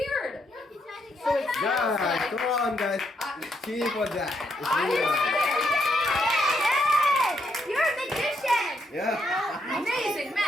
So it's Guys, come on, guys. Cheer for that. Yay! You're a magician! Yeah. Amazing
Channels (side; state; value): both; normal; correlation 0.77